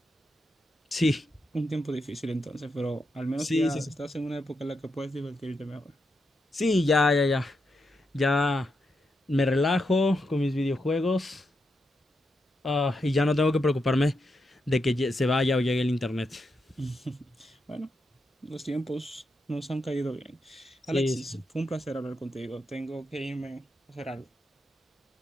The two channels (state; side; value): normal; both; correlation 0.84